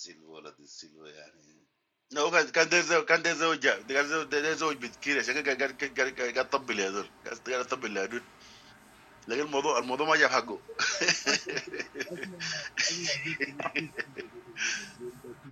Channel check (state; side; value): identical; both; correlation 1.00